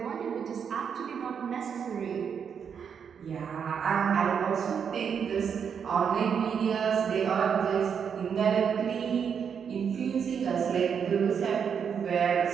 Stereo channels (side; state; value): left; quieter; 7.1 dB